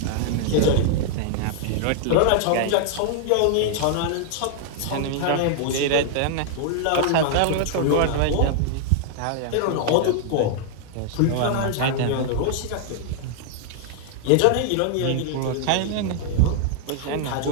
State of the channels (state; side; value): different; both; correlation 0.00